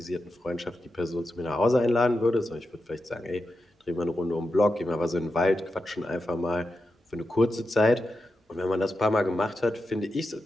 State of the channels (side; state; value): both; normal; correlation 0.89